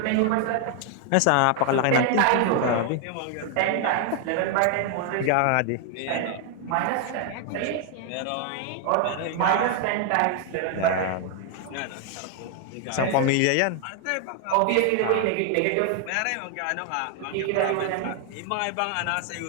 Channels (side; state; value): both; different; correlation 0.00